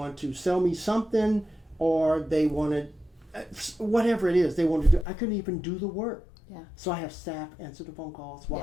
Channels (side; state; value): right; drops out; at 5.1 s